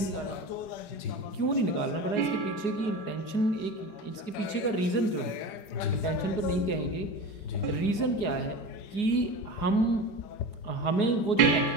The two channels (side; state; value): right; late; 4.8 ms